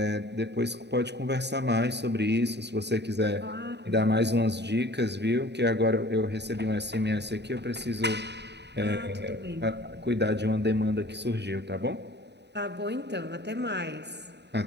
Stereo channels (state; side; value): late; left; 0.50 ms